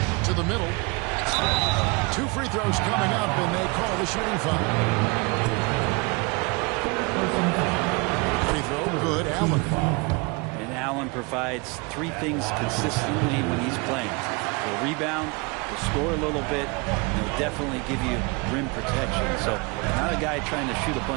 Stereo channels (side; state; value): left; quieter; 28.2 dB